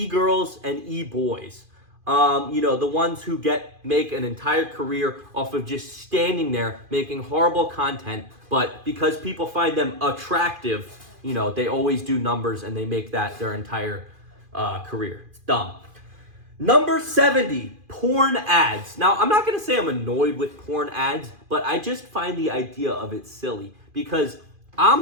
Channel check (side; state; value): left; late; 2.5 ms